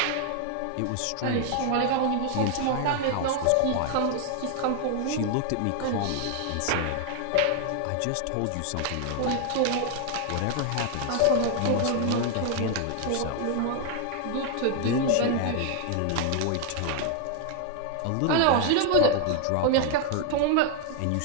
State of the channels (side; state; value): both; different; correlation 0.00